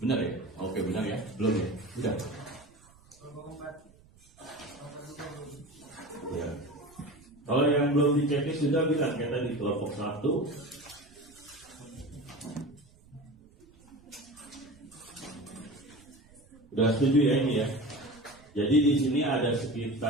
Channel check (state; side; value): noise; right; rumble, 27 dB below the sound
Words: ya? Oke, benar ya? Belum ya? Udah. Ya. Kalau yang belum dicek sudah bilang kita di kelompok 1. Udah setuju ya ini ya? Jadi di sini ada